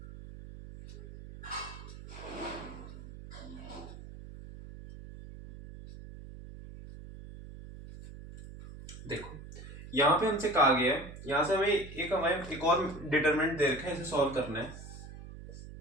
देखो यहां पे हमसे कहा गया है, यहां से हमें एक और डिटरमिनेंट दे रखा है, इसे सॉल्व करना है।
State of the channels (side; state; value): right; noise; hum, 14 dB below the sound